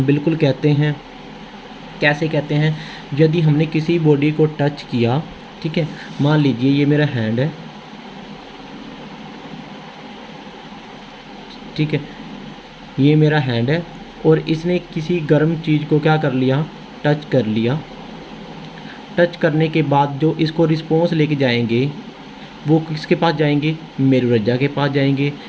बिल्कुल कहते हैं। कैसे कहते हैं, यदि हमने किसी बॉडी को टच किया, ठीक है, मान लीजिए ये मेरा हैंड है, ठीक है, ये मेरा हैंड है, और इसने किसी गर्म चीज़ को क्या कर लिया, टच कर लिया। टच करने के बाद जो इसको रिस्पॉन्स लेके जाएंगे वो किसके पास जाएंगे, मेरुरज्जा के पास जाएंगे,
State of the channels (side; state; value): both; identical; correlation 1.00